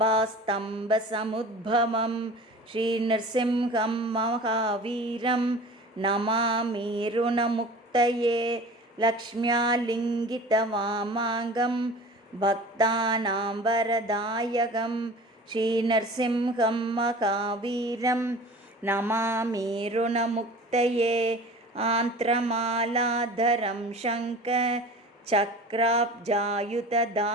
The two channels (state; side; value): normal; both; correlation 0.39